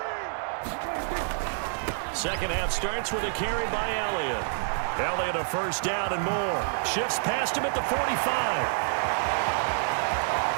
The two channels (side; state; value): left; silent; digital silence